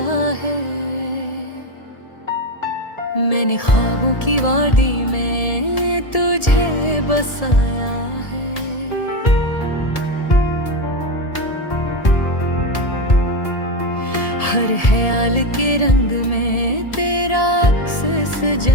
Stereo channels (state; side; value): late; right; 1.7 ms